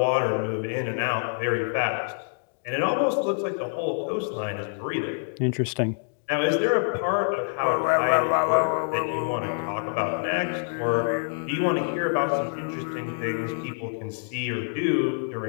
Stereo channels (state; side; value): silent; right; digital silence